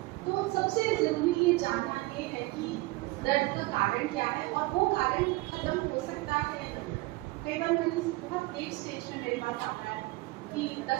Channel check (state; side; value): quieter; left; 21.5 dB